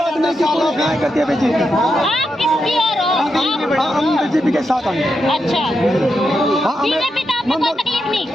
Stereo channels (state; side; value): normal; both; correlation 0.85